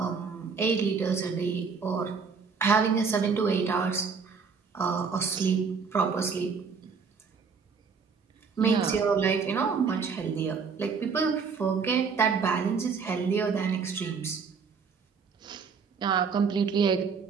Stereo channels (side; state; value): left; quieter; 5.5 dB